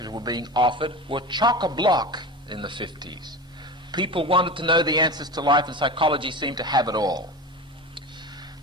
were being offered were chock-a-block, in the 50s. People wanted to know the answers to life, and psychology seemed to have it all.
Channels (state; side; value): normal; both; correlation 0.29